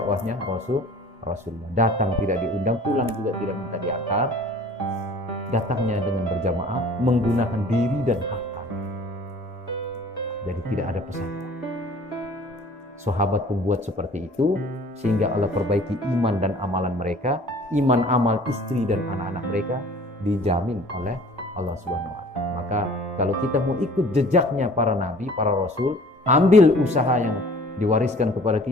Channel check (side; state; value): both; normal; correlation 0.49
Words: Rasulullah. Datang tidak diundang, pulang juga tidak minta diantar. Datangnya dengan berjamaah, menggunakan diri dan harta. Jadi tidak ada pesan. Sahabat pembuat seperti itu, sehingga Allah perbaiki iman dan amalan mereka, iman amal istri dan anak-anak mereka dijamin oleh Allah Subhanahu wa Ta'ala. Maka kalau kita mau ikut jejaknya para nabi, para rasul, ambil usaha yang diwariskan kepada